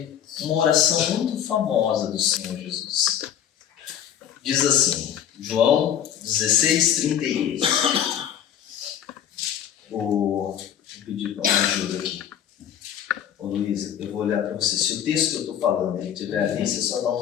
uma oração muito famosa do Senhor Jesus. Diz assim, João 16:38. Vou pedir uma ajuda aqui. Ô Luísa, eu vou olhar para você. Se o texto que eu estou falando ele estiver ali, você só dá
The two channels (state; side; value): quieter; right; 9.6 dB